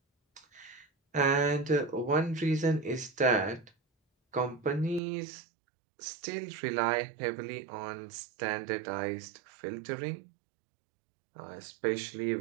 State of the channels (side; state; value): left; drops out; at 5.0 s